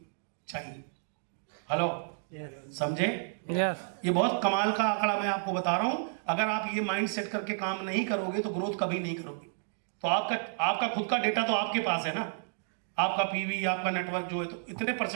चाहिए। हेलो, समझे? Yes. ये बहुत कमाल का आंकड़ा मैं आपको बता रहा हूं। अगर आप ये माइंड सेट करके काम नहीं करोगे तो ग्रोथ कभी नहीं करोगे। तो आपका खुद का डेटा तो आपके पास है ना, आपका पीवी, आपका नेटवर्क जो है, तो इतने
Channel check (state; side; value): silent; left; digital silence